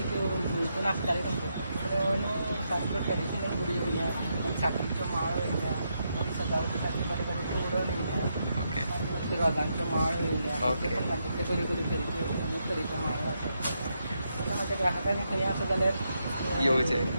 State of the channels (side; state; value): both; inverted; correlation -0.81